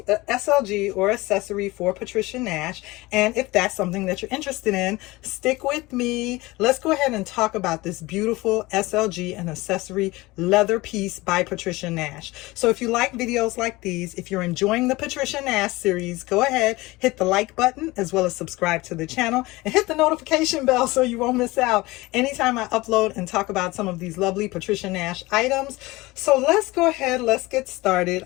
a SLG or accessory for Patricia Nash. And if that's something that you're interested in, stick with me. Let's go ahead and talk about this beautiful SLG and accessory leather piece by Patricia Nash. So if you like videos like these, if you're enjoying the Patricia Nash series, go ahead, hit the like button as well as subscribe to the channel and hit the notification bell so you won't miss out anytime I upload and talk about some of these lovely Patricia Nash items. So let's go ahead, let's get started.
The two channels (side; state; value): right; quieter; 21.0 dB